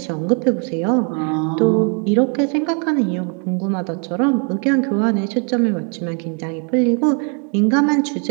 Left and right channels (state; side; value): quieter; left; 38.7 dB